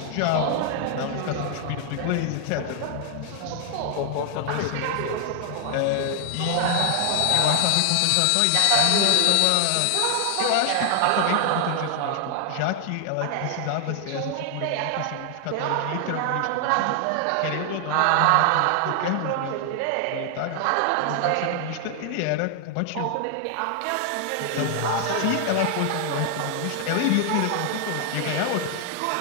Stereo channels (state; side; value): different; both; correlation 0.00